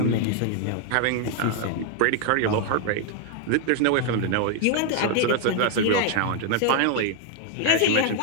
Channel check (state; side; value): different; both; correlation 0.01